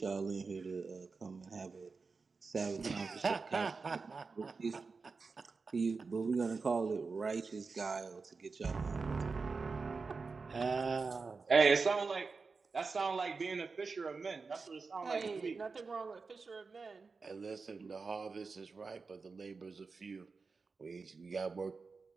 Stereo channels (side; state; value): left; quieter; 4.5 dB